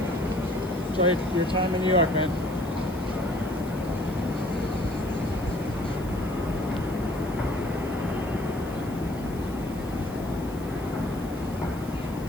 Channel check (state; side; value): noise; left; hiss, 20 dB below the sound